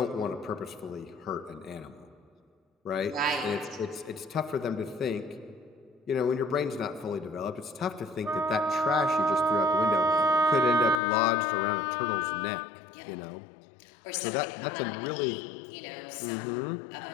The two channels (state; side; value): drops out; right; at 11.0 s